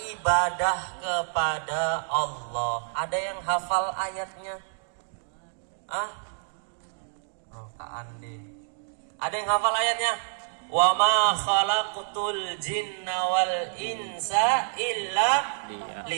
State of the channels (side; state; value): left; silent; digital silence